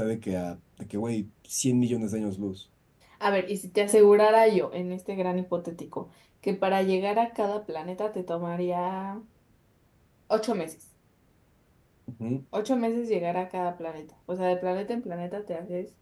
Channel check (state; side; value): identical; both; correlation 1.00